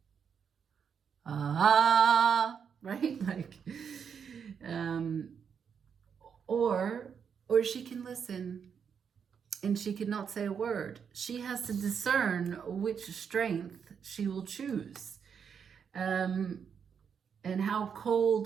Ah, right? Like, or she can listen and she cannot say a word. She has to discern which strength she will choose, and how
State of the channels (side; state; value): left; quieter; 7.0 dB